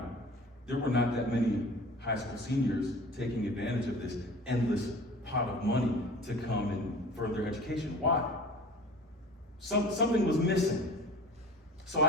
there were not that many high school seniors taking advantage of this endless pot of money to come and further education. Why? Something was missing. So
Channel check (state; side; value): normal; both; correlation 0.40